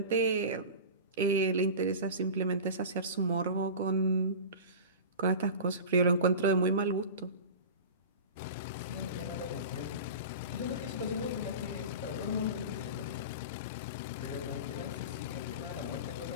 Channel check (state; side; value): inverted; both; correlation -0.31